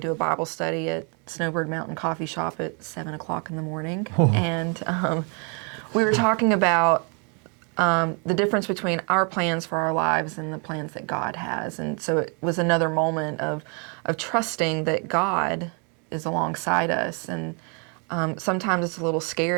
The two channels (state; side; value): quieter; left; 36.6 dB